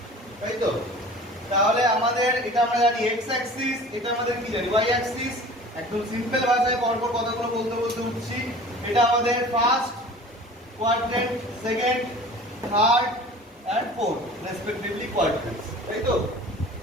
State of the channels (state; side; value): normal; both; correlation 0.43